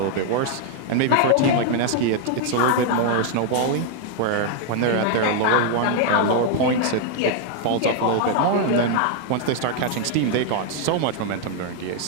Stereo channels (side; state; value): both; different; correlation 0.00